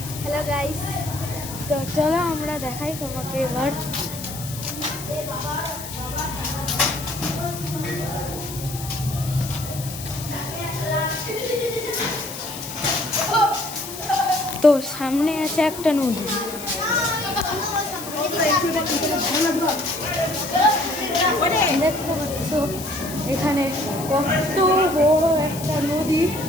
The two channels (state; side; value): noise; left; hiss, 11 dB below the sound